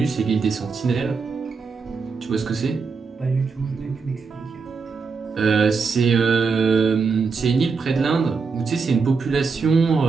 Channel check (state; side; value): quieter; left; 4.9 dB